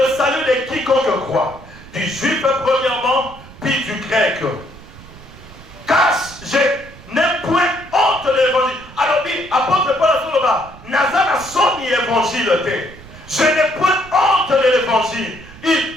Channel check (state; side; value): noise; right; rumble, 19 dB below the sound